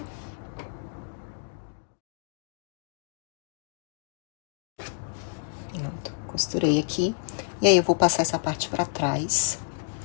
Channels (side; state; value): right; silent; digital silence